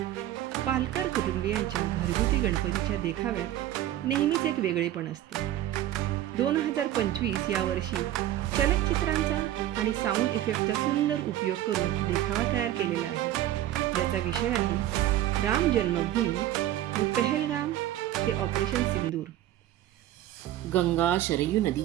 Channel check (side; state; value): left; quieter; 13.2 dB